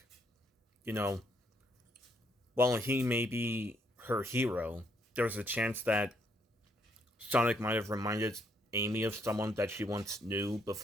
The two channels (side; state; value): both; normal; correlation 0.72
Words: You know, while he may be her hero, there's a chance that Sonic might have reminded Amy of someone that she once knew